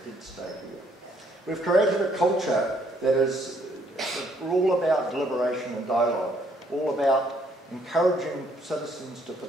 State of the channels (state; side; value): normal; both; correlation 0.67